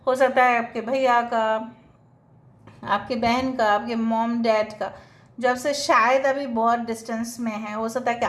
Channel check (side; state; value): both; identical; correlation 1.00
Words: हो सकता है आपके भैया का, आपके बहन का, आपके मॉम डैड का, जब से शायद अभी बहुत डिस्टेंस में है. हो सकता है कि